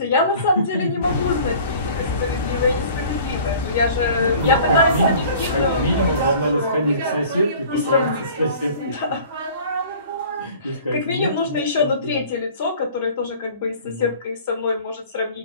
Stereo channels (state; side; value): inverted; both; correlation -0.46